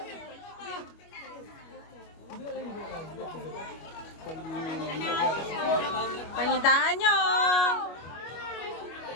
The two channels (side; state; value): right; late; 25 ms